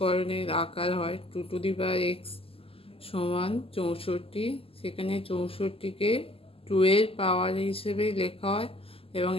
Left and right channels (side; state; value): right; late; 0.27 ms